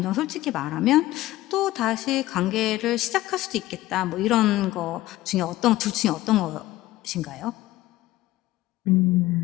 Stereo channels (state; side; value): quieter; right; 16.5 dB